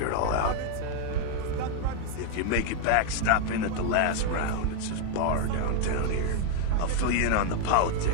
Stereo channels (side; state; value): both; different; correlation 0.00